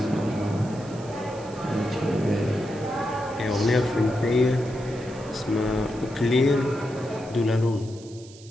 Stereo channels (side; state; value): right; noise; hiss, 21 dB below the sound